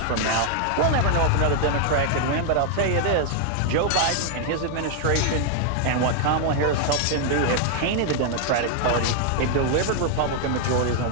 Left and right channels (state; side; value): different; both; correlation 0.00